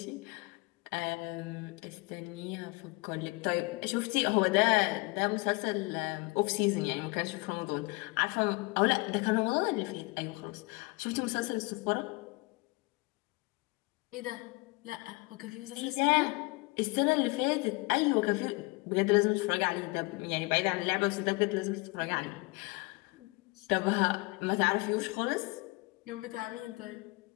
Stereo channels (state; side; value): quieter; right; 26.0 dB